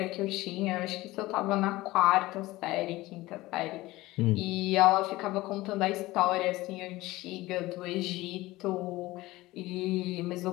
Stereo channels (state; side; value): quieter; right; 18.8 dB